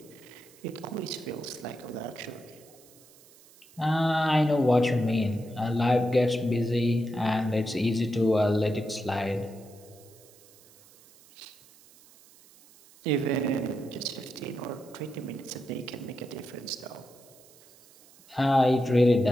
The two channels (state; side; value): noise; right; hiss, 25 dB below the sound